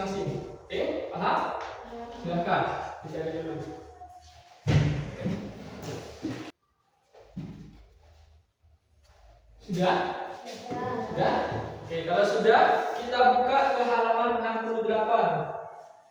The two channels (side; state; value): both; identical; correlation 1.00